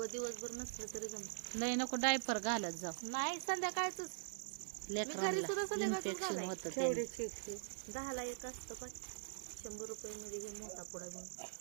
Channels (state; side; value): silent; left; digital silence